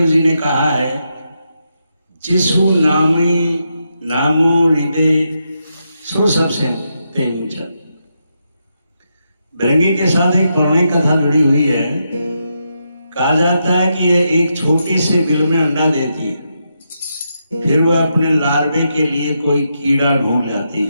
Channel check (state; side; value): inverted; both; correlation -0.83